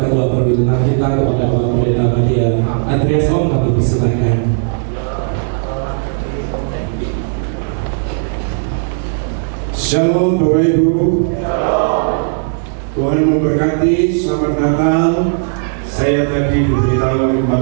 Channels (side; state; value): left; silent; digital silence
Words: Ketua Perwil 6 kita kepada Bapak Pendeta Madia Andreas. Kami persilakan. Shalom Bapak Ibu. Tuhan memberkati, selamat Natal. Saya tadi diberitahu oleh